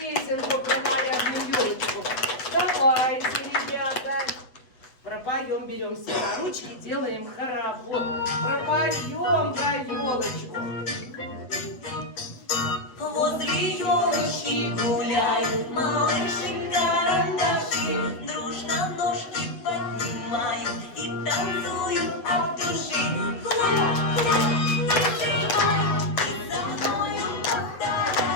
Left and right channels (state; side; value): late; right; 7.8 ms